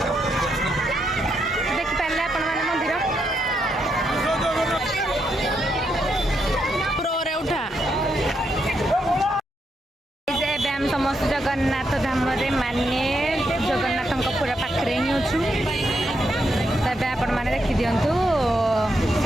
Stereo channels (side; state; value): both; normal; correlation 0.80